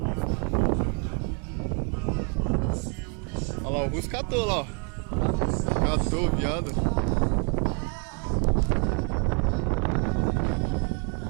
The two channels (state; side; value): quieter; left; 34.9 dB